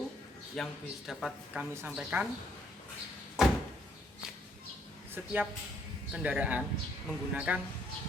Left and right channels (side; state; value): both; normal; correlation 0.68